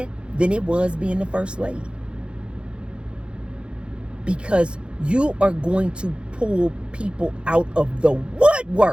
than it was being the first lady. Because you are going to pull people out of the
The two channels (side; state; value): left; late; 0.056 ms